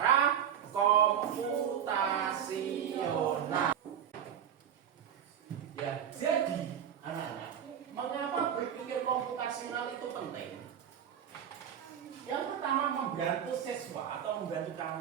komputasional. Ya, jadi anak-anak, mengapa berpikir komputasional itu penting? Yang pertama, membantu siswa atau membantu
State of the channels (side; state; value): left; quieter; 9.0 dB